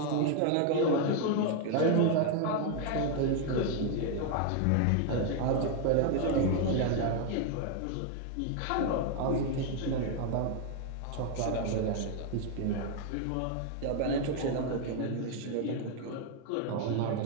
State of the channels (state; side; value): different; both; correlation 0.01